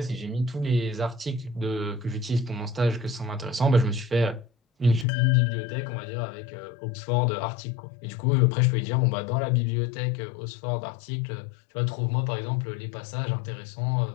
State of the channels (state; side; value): drops out; right; at 5.1 s